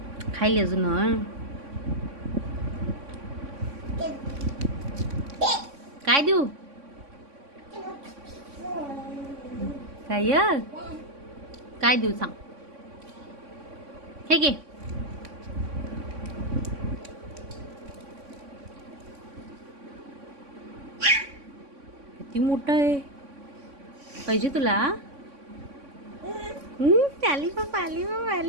खायली अजून. काय देऊ? काय काय देऊ सांग? हे घे. किती मोठं आहे. पाहिजे तुला? आली बाबा, आली बाबा,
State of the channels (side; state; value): left; late; 3.6 ms